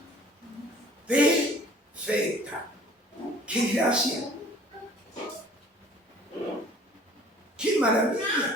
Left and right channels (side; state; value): both; normal; correlation 0.51